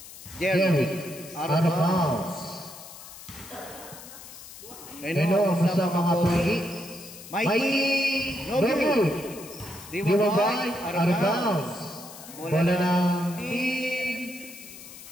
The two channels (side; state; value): left; noise; hiss, 16 dB below the sound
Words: Jerry. Out of bounds. Reno ang sa mga pogi. Mikey. No good. Dimabay. Out of bounds. Bola ng team